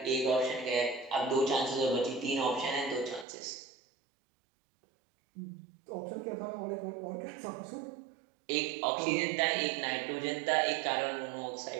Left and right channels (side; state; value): left; drops out; at 3.2 s